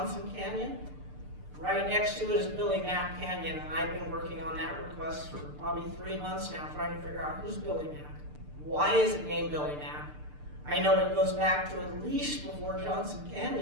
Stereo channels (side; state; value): left; late; 6.7 ms